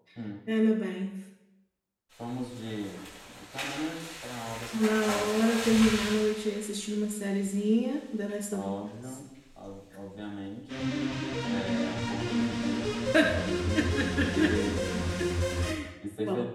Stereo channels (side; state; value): both; identical; correlation 1.00